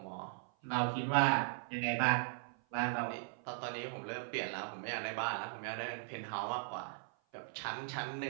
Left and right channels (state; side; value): silent; left; 52 dB below the other